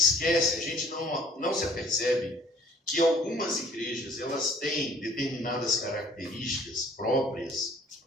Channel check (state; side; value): normal; both; correlation 0.55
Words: a gente não se apercebe que algumas igrejas, elas têm determinadas características próprias